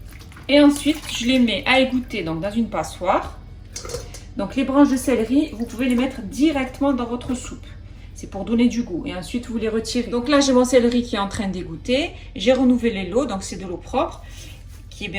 Et ensuite, je les mets à égoutter donc dans une passoire. Donc, les branches de céleri, vous pouvez les mettre directement dans votre soupe. C'est pour donner du goût. Et ensuite, vous les retirez. Donc là, j'ai mon céleri qui est en train d'égoutter. J'ai renouvelé l'eau, donc c'est de l'eau propre, qui est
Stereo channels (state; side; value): identical; both; correlation 1.00